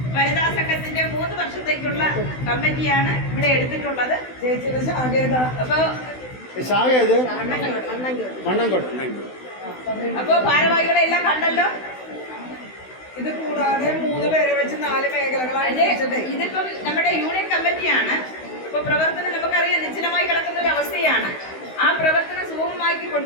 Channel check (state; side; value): late; right; 16 ms